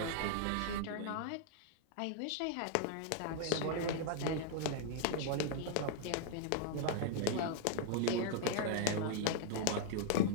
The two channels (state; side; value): different; both; correlation -0.01